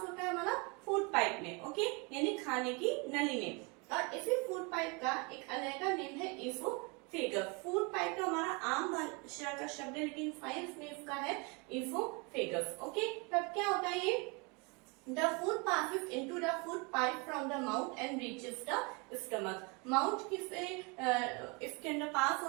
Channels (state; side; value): quieter; left; 30.7 dB